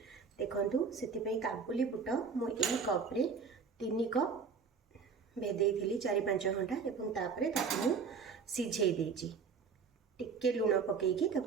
देखु से काबुली बुट मु यही कप रे 3 कप भेदे 4-5 घंटा एवं तापरे ताकू सिझे देची टिके लुण पकईकी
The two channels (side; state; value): left; quieter; 5.6 dB